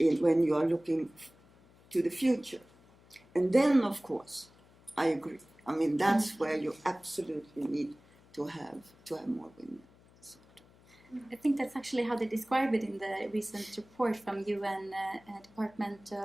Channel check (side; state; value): left; noise; hum, 27 dB below the sound